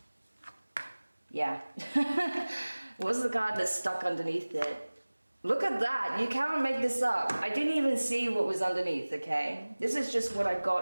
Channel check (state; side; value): inverted; both; correlation -1.00